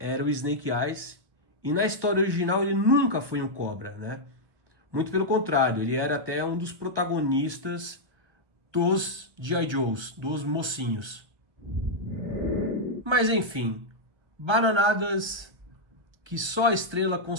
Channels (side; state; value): left; late; 1.3 ms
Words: o Snake Eyes E na história original ele nunca foi um cobra, né? Muito pelo contrário, ele era até um dos protagonistas dos G.I. Joes, dos mocinhos. Mas enfim, bananadas que só a Estrela